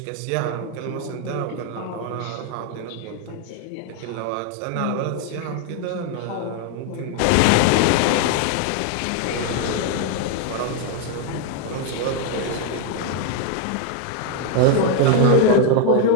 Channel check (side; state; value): both; different; correlation 0.01